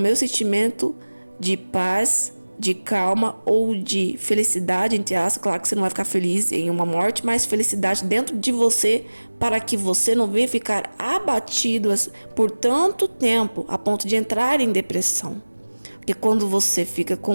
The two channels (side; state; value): both; inverted; correlation -1.00